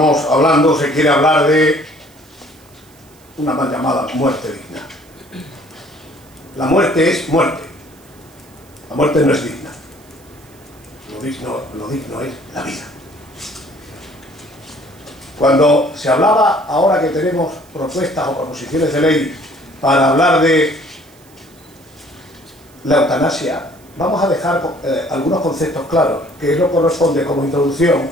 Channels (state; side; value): noise; right; hiss, 28 dB below the sound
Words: hablando, se quiere hablar de una mal llamada muerte digna. La muerte es muerte. La muerte no es digna. Lo digno es la vida. Cuando se hablaba, ahora que tenemos propuestas o proposiciones de ley para hablar de la eutanasia, vamos a dejar algunos conceptos claros, que es lo que corresponde como introducción